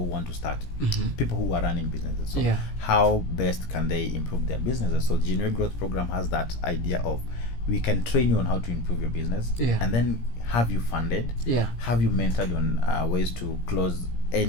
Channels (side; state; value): right; late; 17 ms